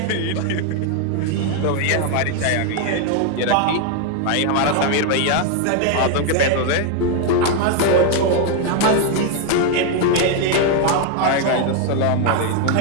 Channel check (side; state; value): both; different; correlation 0.01